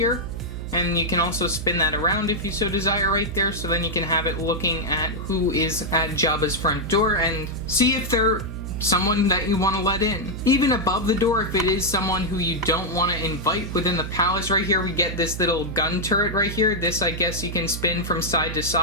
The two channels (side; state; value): right; noise; hum, 7 dB below the sound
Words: And you can also spin that around if you so desire right there, so then you can have it looking at who is at Jabba's front door and see if they're someone that you want to let in. Even above the door, if it is someone who you don't want to invite within the palace right here, we get this little gun turret right here. This, I guess, you can spin from side to